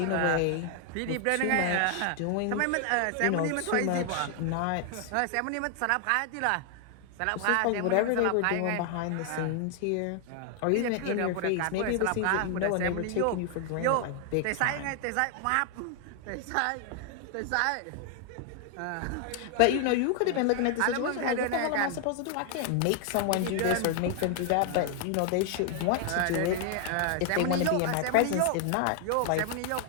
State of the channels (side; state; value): both; different; correlation 0.00